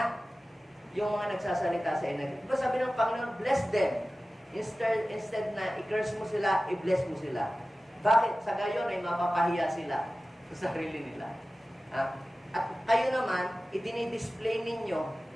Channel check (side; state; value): both; normal; correlation 0.96